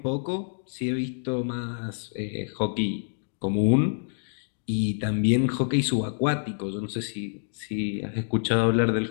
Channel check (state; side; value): silent; right; digital silence